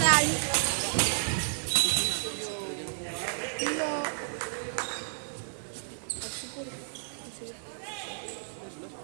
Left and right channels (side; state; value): left; silent; digital silence